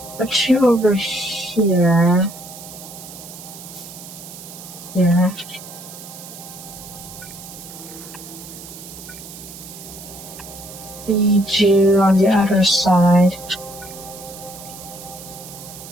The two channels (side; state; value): right; noise; hiss, 14 dB below the sound